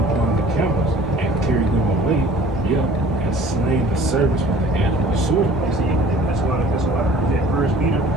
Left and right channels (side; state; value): both; normal; correlation 0.49